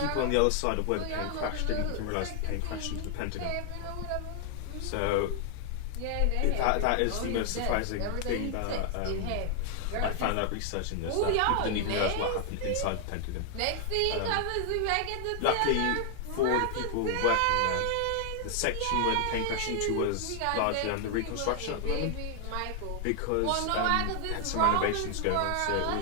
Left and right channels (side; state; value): both; different; correlation 0.00